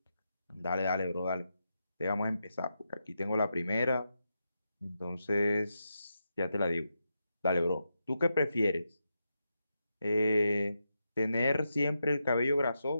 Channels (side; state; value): both; inverted; correlation -0.86